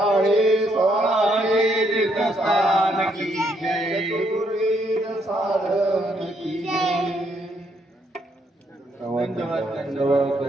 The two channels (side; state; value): both; normal; correlation 0.73